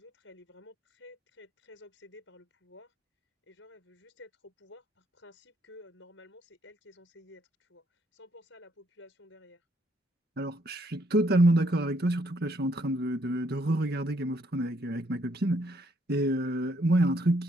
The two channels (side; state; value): both; normal; correlation 0.71